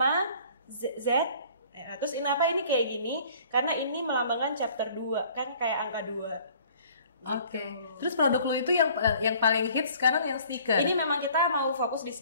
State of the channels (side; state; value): both; inverted; correlation -0.53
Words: Z. Terus kenapa ini kayak gini? Karena ini melambangkan chapter 2, kan kayak angka 2. Oke. Terus produk lu itu yang paling hits sekarang yang sneaker. Ini memang kita mau fokus di